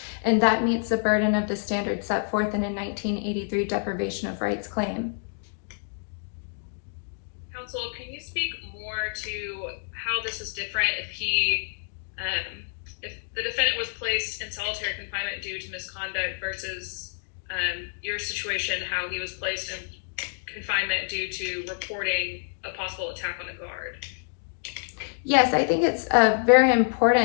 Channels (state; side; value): silent; right; digital silence